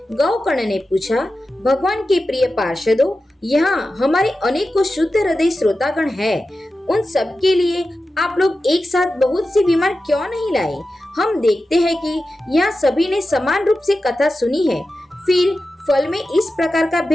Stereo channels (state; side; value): normal; both; correlation 0.93